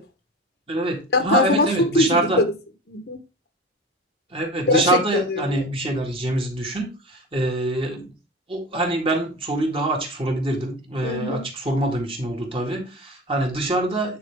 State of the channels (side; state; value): both; normal; correlation 0.31